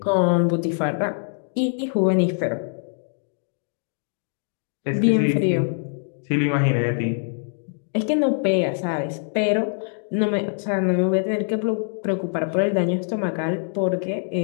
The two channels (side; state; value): right; silent; digital silence